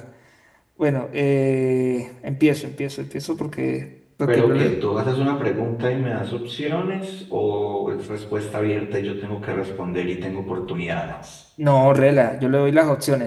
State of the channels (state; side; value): identical; both; correlation 1.00